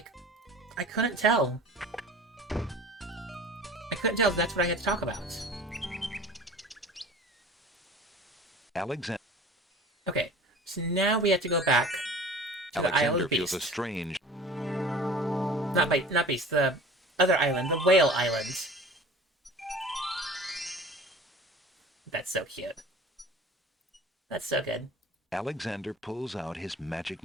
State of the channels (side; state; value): both; normal; correlation 0.41